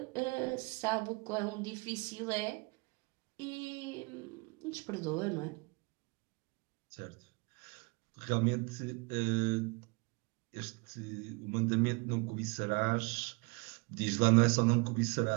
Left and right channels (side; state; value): left; quieter; 29.2 dB